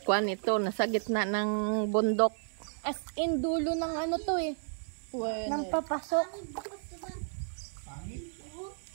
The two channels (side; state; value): left; silent; digital silence